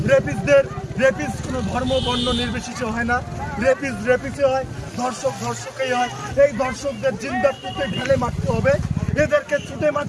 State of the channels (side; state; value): both; identical; correlation 1.00